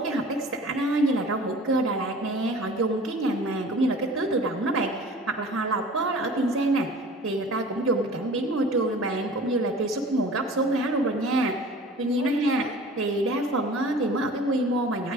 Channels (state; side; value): normal; both; correlation 0.43